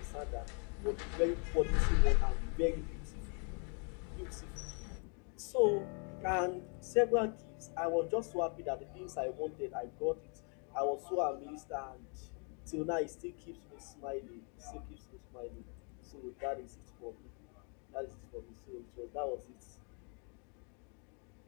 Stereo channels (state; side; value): quieter; right; 38.3 dB